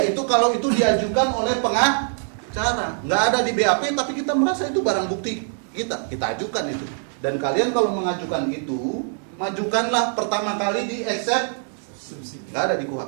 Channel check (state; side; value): silent; left; 63 dB below the other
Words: kalau itu diajukan oleh pengacara. Nggak ada di BAP, tapi kita merasa itu barang bukti kita ajukan itu. Dan kalian kalau mengajukan itu, majukanlah pertama kali di eksepsi. Nggak ada di